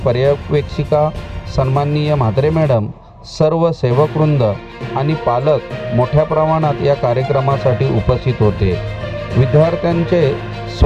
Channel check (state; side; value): identical; both; correlation 1.00